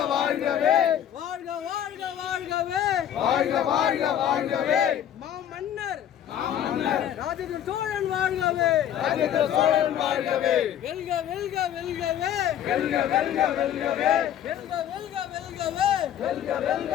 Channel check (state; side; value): quieter; right; 10.4 dB